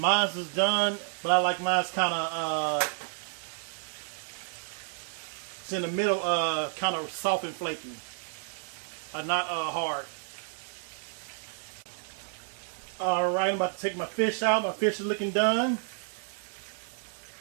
is done, but I like mine's kind of it's in the middle, kind of soft and flaky, not hard. All right, I'm about to take my fish out. My fish is looking done.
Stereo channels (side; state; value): left; silent; digital silence